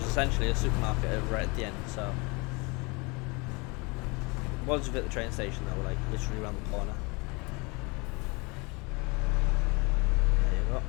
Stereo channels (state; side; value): quieter; right; 28.3 dB